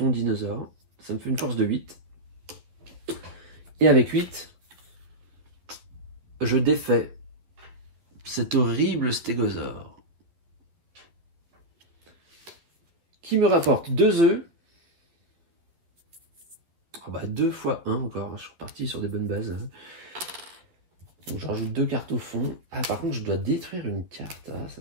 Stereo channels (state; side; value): late; left; 11 ms